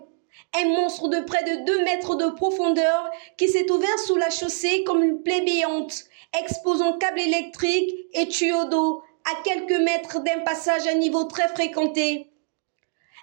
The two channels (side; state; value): left; silent; digital silence